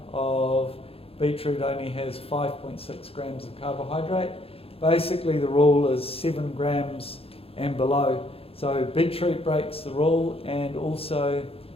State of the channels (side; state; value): right; late; 0.28 ms